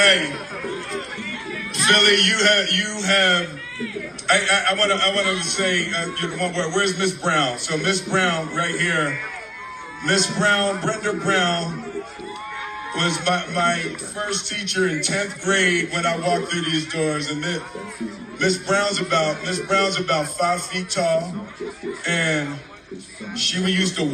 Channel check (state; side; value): identical; both; correlation 1.00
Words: Philly, you have. I want to say one word. Where's Miss Brown? So Miss Brown, right here. Miss Brown, Brenda Brown, was my first teacher in 10th grade when I walked through these doors. And Miss Brown's about 5 feet tall, and she used to